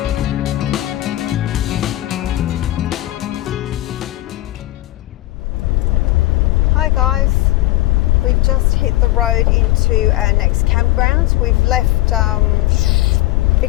Hi guys, we've just hit the road into our next campground. We've left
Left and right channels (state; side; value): quieter; right; 16.9 dB